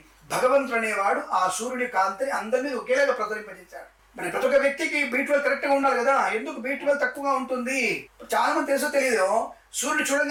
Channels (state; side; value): identical; both; correlation 1.00